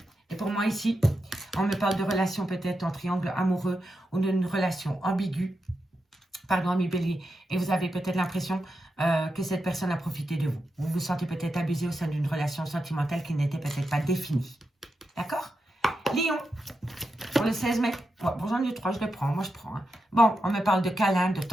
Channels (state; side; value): normal; both; correlation 0.87